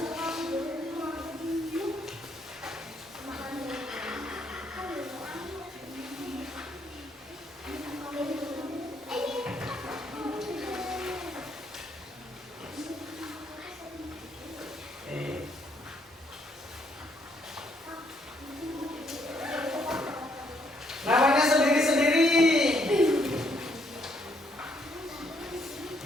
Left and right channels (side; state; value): both; normal; correlation 0.71